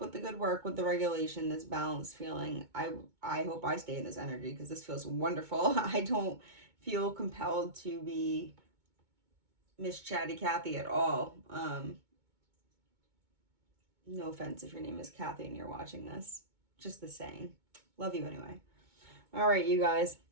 the good work, with the regulation, this balanced feeling. I hope I stay in this energy because this feels wonderful. I don't feel compelled to be Miss Chatty Cathy at all. No offense if your name is Kathy and you're watching this. Just the saying. Love you anyway. All right, you guys.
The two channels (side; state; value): left; late; 2.2 ms